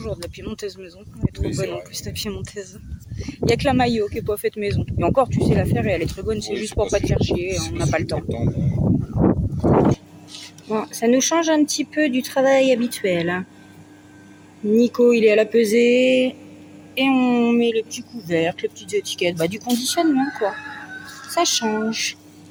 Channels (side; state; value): both; identical; correlation 1.00